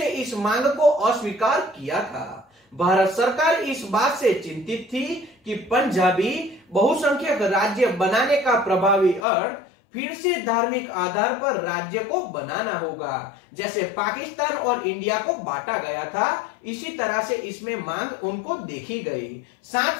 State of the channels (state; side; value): drops out; right; at 9.2 s